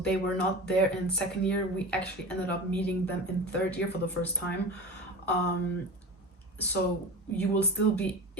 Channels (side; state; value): both; normal; correlation 0.31